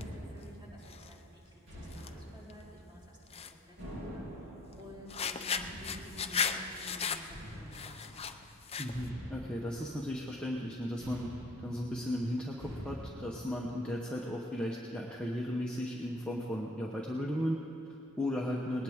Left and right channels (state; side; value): normal; both; correlation 0.59